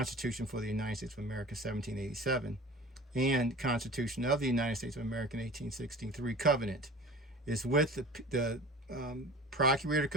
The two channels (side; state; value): both; normal; correlation 0.39